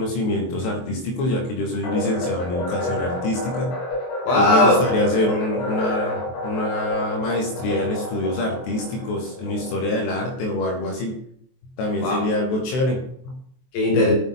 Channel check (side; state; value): right; late; 23 ms